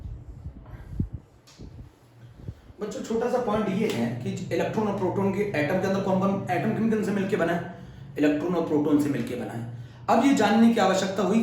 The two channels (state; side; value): identical; both; correlation 1.00